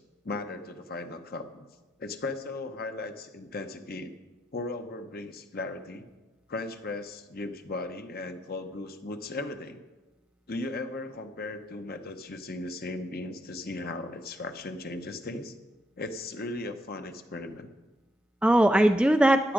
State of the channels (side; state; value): both; normal; correlation 0.79